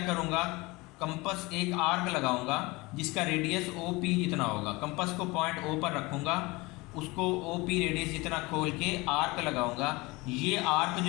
करूँगा, कंपस एक आर्क लगाऊंगा जिसका रेडियस OP जितना होगा। कंपस को पॉइंट O पर रखूँगा, उसको OP रेडियस जितना खोल के आर्क लगाऊंगा। ये आर्क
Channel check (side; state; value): right; quieter; 23.3 dB